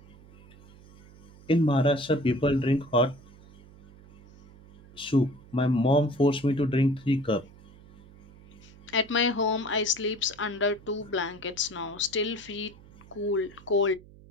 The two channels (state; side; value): noise; right; hum, 22 dB below the sound